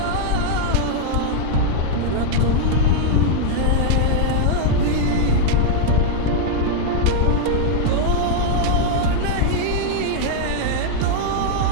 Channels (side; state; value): both; different; correlation 0.00